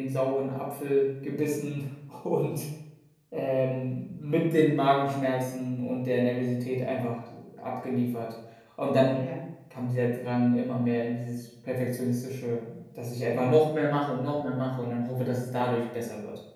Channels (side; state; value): both; identical; correlation 1.00